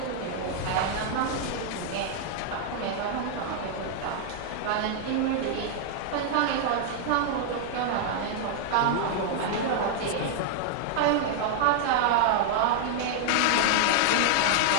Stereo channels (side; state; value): both; different; correlation 0.00